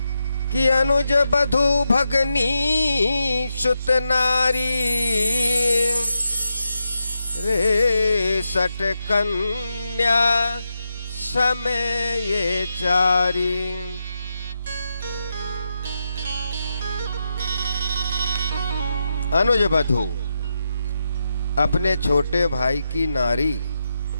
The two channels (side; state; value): both; inverted; correlation -0.86